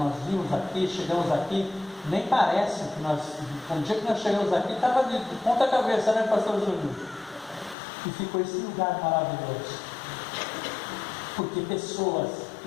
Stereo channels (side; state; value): right; drops out; at 7.8 s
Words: vimos aqui, chegamos aqui Nem parece que nós, no dia que nós chegamos aqui, estava de ponta cabeça, né, pastor Júlio? E ficou esse lugar maravilhoso. Porque pessoas